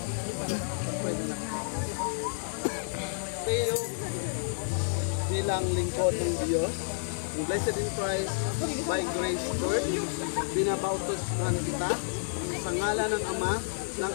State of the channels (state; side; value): silent; right; digital silence